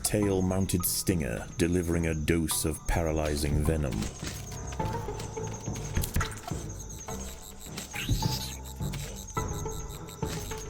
tail-mounted stinger, delivering a dose of paralyzing venom.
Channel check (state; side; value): identical; both; correlation 1.00